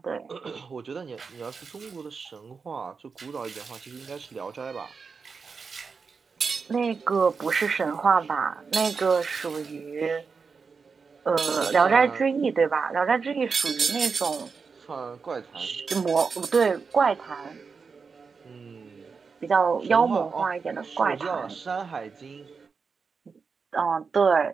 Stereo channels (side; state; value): left; quieter; 5.2 dB